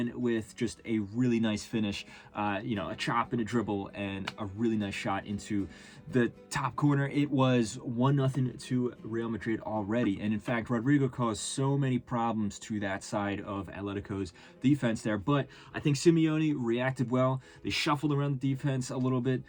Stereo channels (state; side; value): identical; both; correlation 1.00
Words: with just a really nice finish, a chop and a dribble and a really nice shot into the top corner. It was 1-0 to Real Madrid already. And in fact, Rodrigo caused so many problems to that side of Atletico's defense there, but I think Simeone reacted well. They shuffled around the defense a little bit.